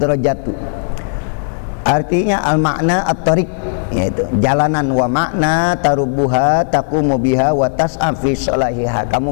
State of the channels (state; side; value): silent; right; digital silence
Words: Artinya al-makna at-tariq, yaitu jalanan, wa makna tarubuha taqumu biha wa tas'a fi salahiha. Kamu